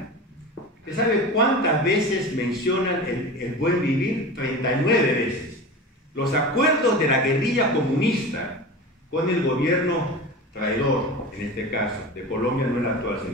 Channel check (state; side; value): normal; both; correlation 0.31